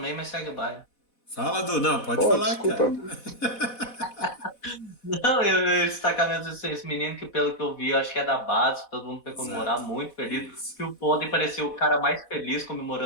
mas segue o baile. Fala, Du. Não, pode falar, desculpa. cara. Não, eu destacar mesmo esse menino que, pelo que eu vi, eu acho que é da base, todo mundo foi comemorar, muito feliz. Que o Foden pareceu o cara mais feliz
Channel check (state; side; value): late; right; 4.1 ms